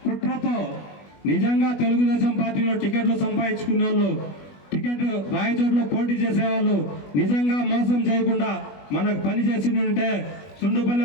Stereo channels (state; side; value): late; right; 21 ms